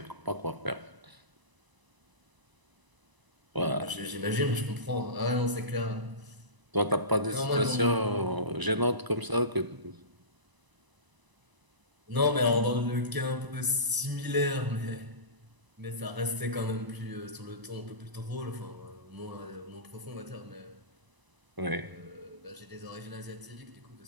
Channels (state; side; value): late; left; 1.0 ms